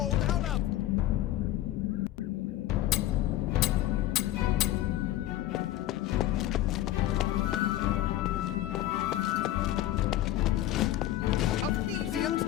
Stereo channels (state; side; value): quieter; right; 13.8 dB